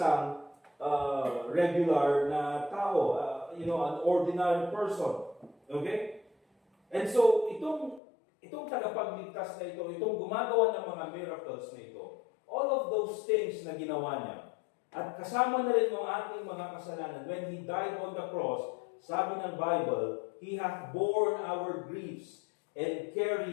regular na tao, an ordinary person. Okay? And so, itong tagapagligtas na ito, itong gumagawa ng mga miracles na ito, all of those things na ginawa niya, at kasama na rin ng ating mga kasalanan, when He died on the cross, sabi ng Bible, He hath borne our griefs and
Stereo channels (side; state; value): right; drops out; at 8.0 s